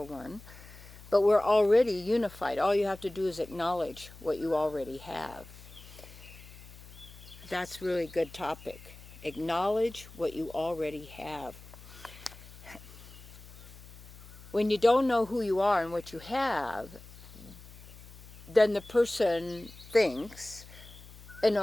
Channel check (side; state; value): left; noise; hum, 18 dB below the sound